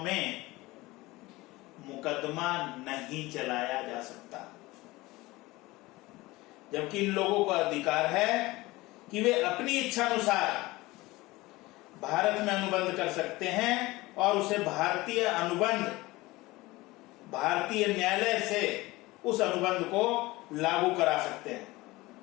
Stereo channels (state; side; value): quieter; right; 20.4 dB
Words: मुकदमा नहीं चलाया जा सकता। जबकि इन लोगों को अधिकार है कि वे अपनी इच्छा अनुसार भारत में अनुबंध कर सकते हैं और उसे भारतीय अनुबंध, भारतीय न्यायालय से उस अनुबंध को लागू करा सकते हैं।